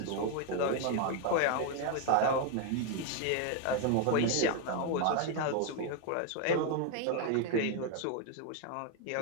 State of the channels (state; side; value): different; both; correlation 0.01